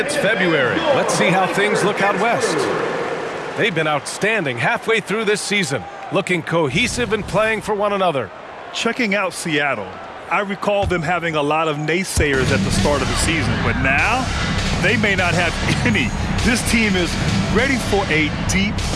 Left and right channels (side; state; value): both; identical; correlation 1.00